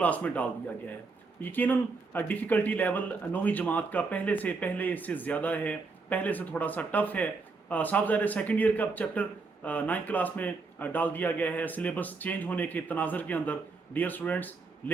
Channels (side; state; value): left; quieter; 4.1 dB